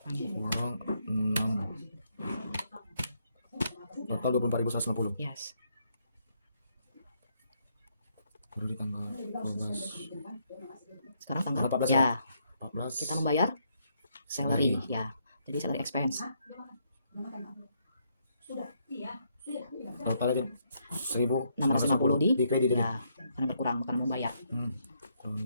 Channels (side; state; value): both; inverted; correlation -0.74